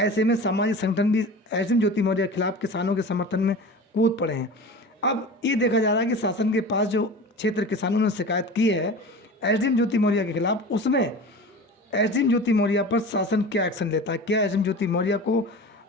में सामाजिक संगठन भी एसडीएम ज्योति मौर्य के खिलाफ किसानों के समर्थन में कूद पड़े हैं। अब ये देखा जा रहा है कि शासन के पास जो क्षेत्र किसानों ने शिकायत की है एसडीएम ज्योति मौर्य के खिलाफ, उसमें एसडीएम ज्योति मौर्य पर शासन क्या एक्शन लेता है। क्या एसडीएम ज्योति मौर्य को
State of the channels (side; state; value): both; normal; correlation 0.34